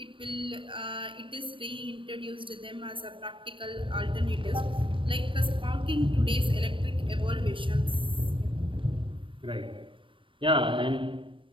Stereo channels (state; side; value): late; left; 0.25 ms